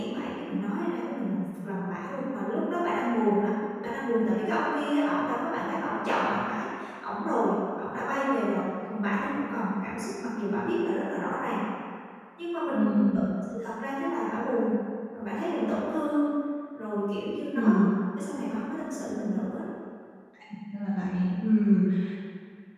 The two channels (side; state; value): both; identical; correlation 1.00